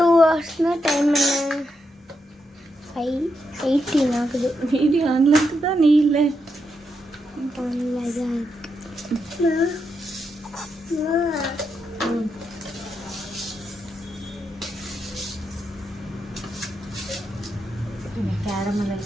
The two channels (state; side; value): normal; both; correlation 0.83